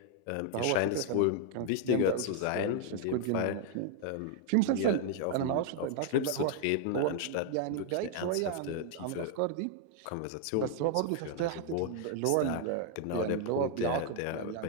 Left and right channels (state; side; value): different; both; correlation 0.00